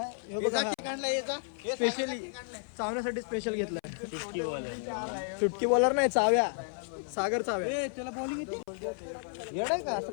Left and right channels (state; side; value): silent; right; 56 dB below the other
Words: स्पेशली चावण्यासाठी स्पेशल घेतलाय. सुटकी बॉलर नाही चाव्या सागर चाव्या त्याला बॉलिंग येते येणार का असं